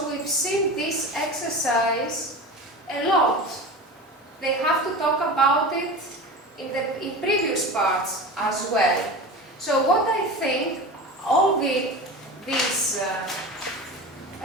we've seen this exercise a lot. They have to talk about it in previous parts as well. So what I think, all these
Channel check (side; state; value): both; normal; correlation 0.30